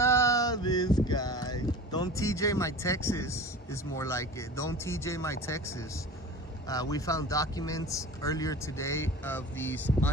this guy. Don't TJ my Texas is more like it. Don't TJ my Texas. We found documents earlier today of these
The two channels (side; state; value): both; normal; correlation 0.37